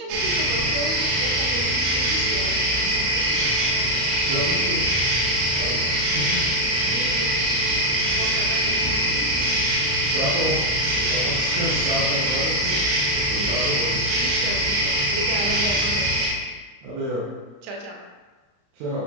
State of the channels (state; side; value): late; left; 34 ms